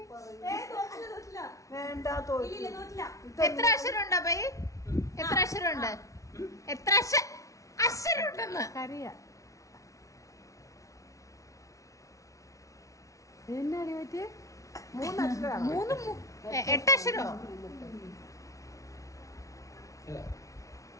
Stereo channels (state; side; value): late; right; 0.16 ms